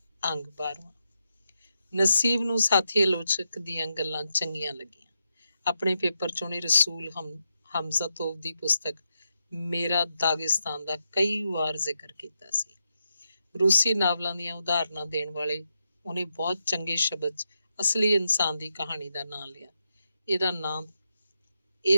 ਅੰਗ 12ਵਾਂ। ਨਸੀਬ ਨੂੰ ਸਾਥੀ ਆਲੋਚਕ ਦੀਆਂ ਗੱਲਾਂ ਚੰਗੀਆਂ ਲੱਗੀਆਂ। ਆਪਣੇ ਪੇਪਰ 'ਚ ਉਹਨੇ ਰਸੂਲ ਹਮਜ਼ਤੋਵ ਦੀ ਪੁਸਤਕ ਮੇਰਾ ਦਾਗਿਸਤਾਨ ਦਾ ਕਈ ਵਾਰ ਜ਼ਿਕਰ ਕੀਤਾ ਸੀ। ਰੂਸੀ ਨਾਵਲਾਂ ਦੀਆਂ ਉਦਾਹਰਨਾਂ ਦੇਣ ਵਾਲੇ ਉਹਨੇ ਬਹੁਤ ਚੰਗੇ ਸ਼ਬਦ 'ਚ ਅਸਲੀ ਇਨਸਾਨ ਦੀ ਕਹਾਣੀ ਦਾ ਨਾਂ ਲਿਆ।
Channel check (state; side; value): inverted; both; correlation -0.84